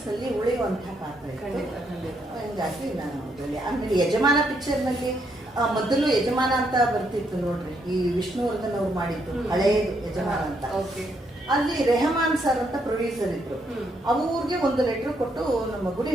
ಉಳಿಯುವಂತಹ ಪಾತ್ರ ಇತ್ತು. ಹಿಂಗಾಗಿ ನಾನು ಆಮೇಲೆ ಯಜಮಾನ ಪಿಕ್ಚರ್ ನಲ್ಲಿ ಮೊದಲು ಯಜಮಾನ ಅಂತ ಬರ್ತಿತ್ತು ನೋಡ್ರಿ, ಈ ವಿಷ್ಣುವರ್ಧನ್ ಅವ್ರು ಮಾಡಿದ್ದು ಹಳೆಯದು ಯಜಮಾನ ಅಂತ. ಅಲ್ಲಿ ರೆಹಮಾನ್ ಸರ್ ಅಂತ ಪ್ರೊಡ್ಯೂಸರ್ ಇದ್ರು. ಅವ್ರಿಗೆ ಒಂದು ಲೆಟರ್ ಕೊಟ್ಟು ನಮ್ಮ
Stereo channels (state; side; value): normal; both; correlation 0.75